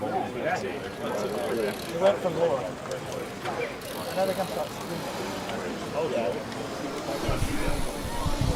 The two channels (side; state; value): both; identical; correlation 1.00